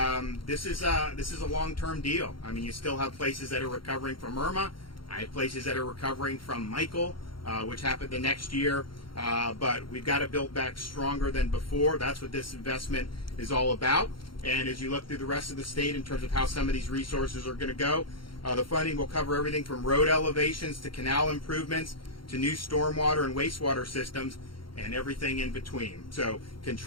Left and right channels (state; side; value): late; right; 0.73 ms